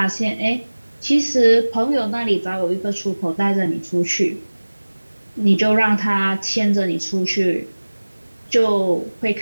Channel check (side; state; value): both; inverted; correlation -1.00